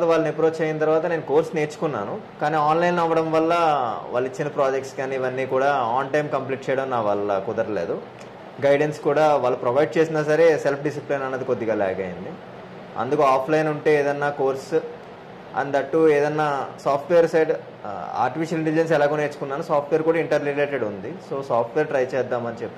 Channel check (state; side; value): identical; both; correlation 1.00